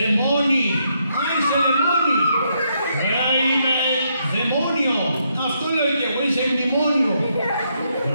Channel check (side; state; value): both; inverted; correlation -0.76